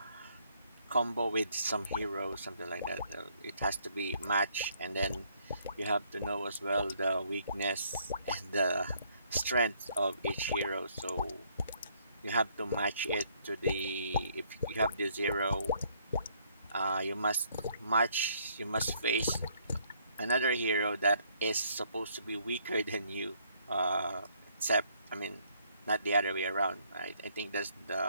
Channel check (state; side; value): inverted; both; correlation -0.67